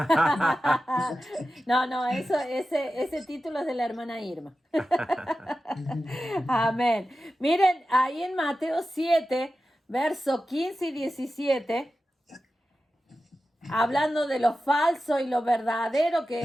No, ese título es de la hermana Irma. Amén. Miren, ahí en Mateo 7, verso 15 y 17, hablando de lo falso y lo verdadero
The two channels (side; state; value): both; normal; correlation 0.93